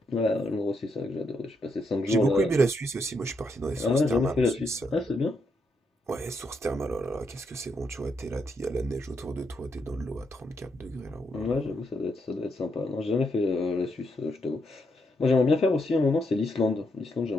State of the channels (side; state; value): both; normal; correlation 0.79